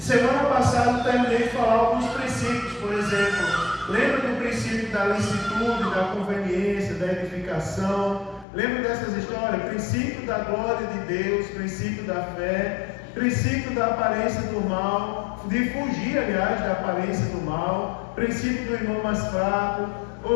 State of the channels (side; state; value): right; drops out; at 8.5 s